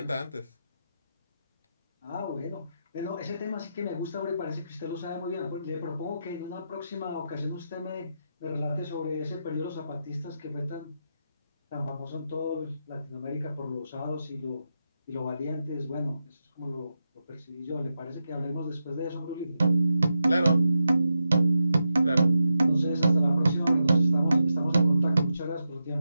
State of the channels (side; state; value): both; inverted; correlation -0.87